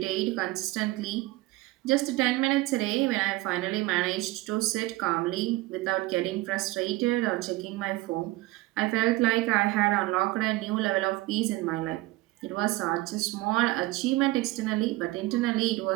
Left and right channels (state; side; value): quieter; left; 19.4 dB